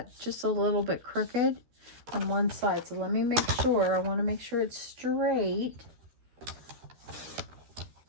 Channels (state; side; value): late; left; 13 ms